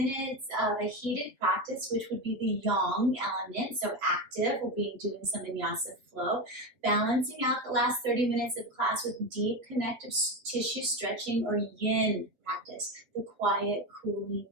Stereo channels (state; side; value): late; left; 8.2 ms